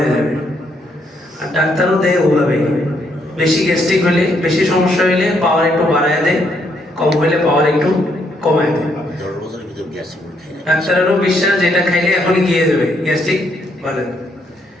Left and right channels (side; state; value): both; normal; correlation 0.73